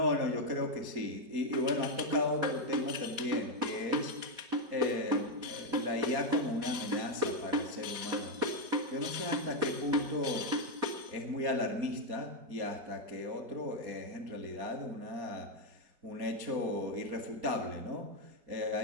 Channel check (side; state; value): left; late; 4.2 ms